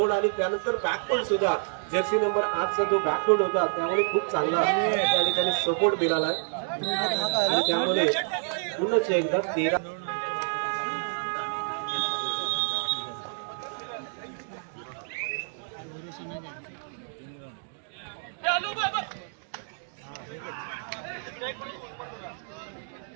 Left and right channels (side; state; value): left; silent; digital silence